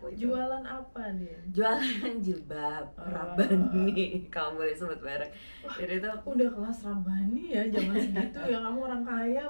itu. Jualan apa, Din? Jualan jilbab Rabbani, kamu boleh sebut merek. Jadi itu udah kelas Rabbani ya, zaman segitu ya. Kamu orang kaya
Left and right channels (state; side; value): inverted; both; correlation -1.00